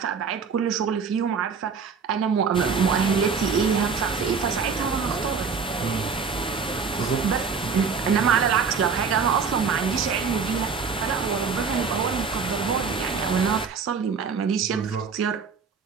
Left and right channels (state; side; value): quieter; left; 5.7 dB